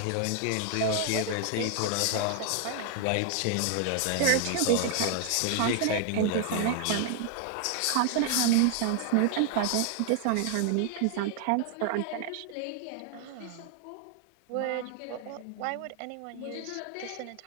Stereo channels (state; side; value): different; both; correlation 0.00